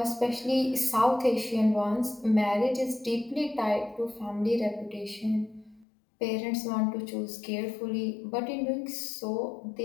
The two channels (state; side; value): drops out; right; at 5.9 s